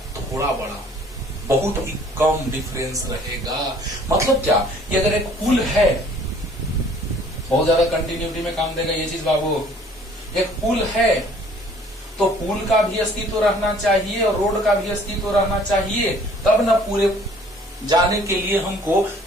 थोड़ा बड़ा, बहुत ही कम डिफरेंस रहेगा। मतलब क्या, कि अगर एक पुल है, बहुत ज्यादा कंटिन्यूटी में काम देगा ये चीज बाबू। एक पुल है तो पुल का भी अस्तित्व रहना चाहिए और रोड का भी अस्तित्व रहना चाहिए, तब ना पूरे जाने के लिए हमको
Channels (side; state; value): both; normal; correlation 0.55